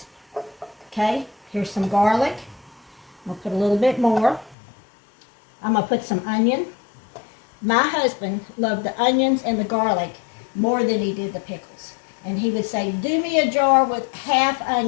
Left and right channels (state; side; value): drops out; right; at 4.5 s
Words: Okay, here's some garlic. I'm going to put a little bit more. I'm going to put some onion. My husband loved the onions and the garlic more than he did the pickles. And he would say, do me a jar with half